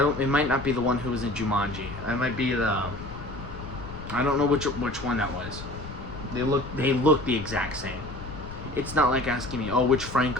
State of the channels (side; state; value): left; noise; rumble, 11 dB below the sound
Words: it might not be the one who was in Jumanji. It might be I don't know which one that was. They look the exact same. It's not like asking me, oh, which